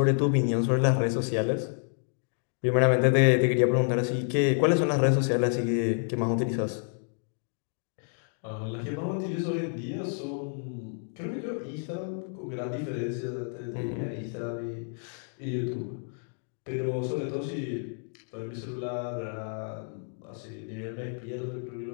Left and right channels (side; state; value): right; silent; 58 dB below the other